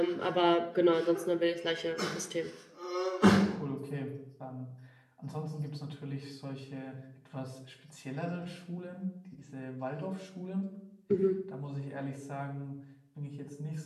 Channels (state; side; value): identical; both; correlation 1.00